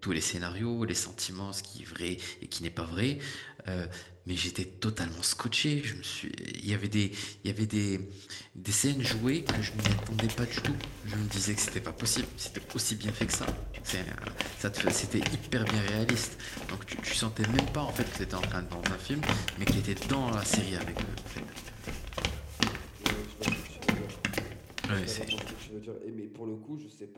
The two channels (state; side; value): identical; both; correlation 1.00